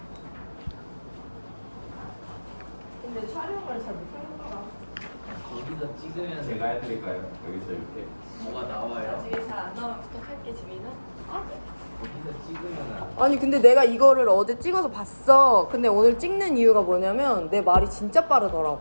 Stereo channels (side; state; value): both; inverted; correlation -1.00